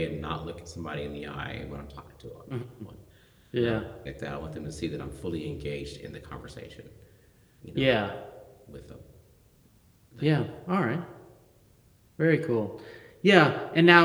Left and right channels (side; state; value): both; identical; correlation 1.00